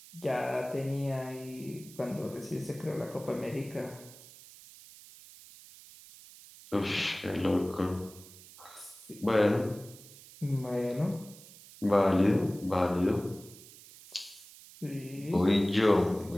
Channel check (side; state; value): right; noise; hiss, 19 dB below the sound